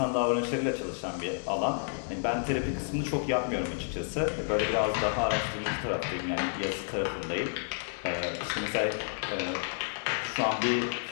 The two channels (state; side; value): silent; right; digital silence